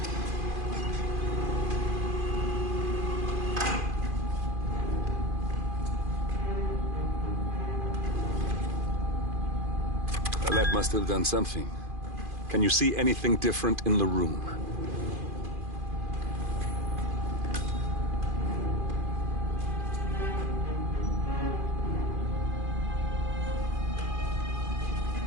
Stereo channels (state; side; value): late; left; 2.5 ms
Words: That must have done something. Can you see anything different in the room?